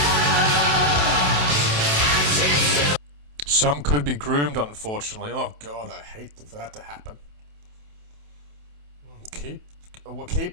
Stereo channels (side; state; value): left; late; 28 ms